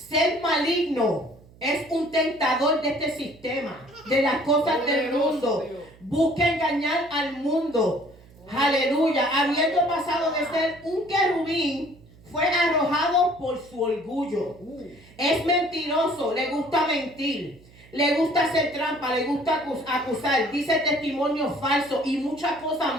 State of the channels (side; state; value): right; noise; hum, 25 dB below the sound